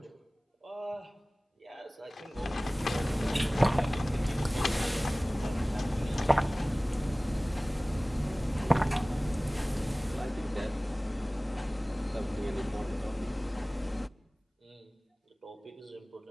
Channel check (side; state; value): both; normal; correlation 0.98